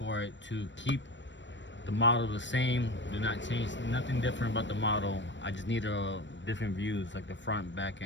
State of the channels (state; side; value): late; right; 0.53 ms